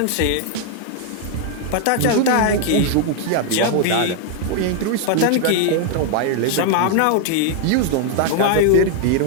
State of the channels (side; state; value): both; different; correlation 0.00